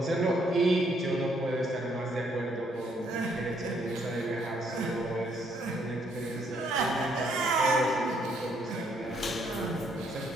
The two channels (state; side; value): normal; both; correlation 0.70